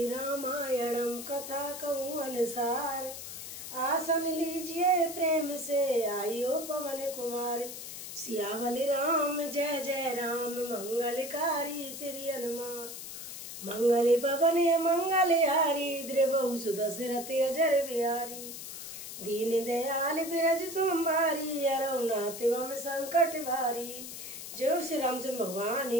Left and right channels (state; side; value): noise; left; hiss, 10 dB below the sound